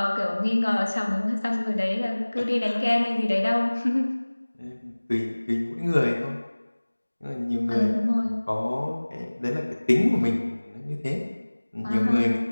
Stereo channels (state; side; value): inverted; both; correlation -1.00